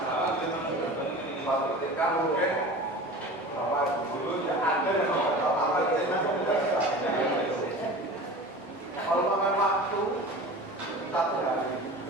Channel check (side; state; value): both; normal; correlation 0.36